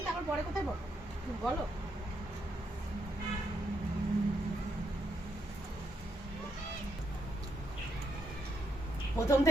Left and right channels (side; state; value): both; normal; correlation 0.79